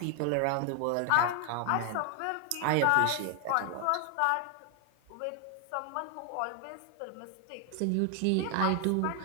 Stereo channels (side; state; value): both; different; correlation 0.00